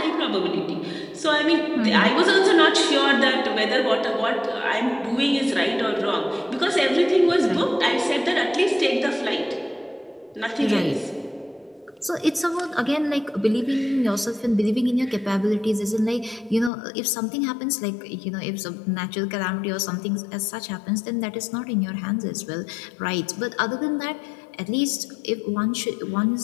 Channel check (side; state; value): right; drops out; at 16.7 s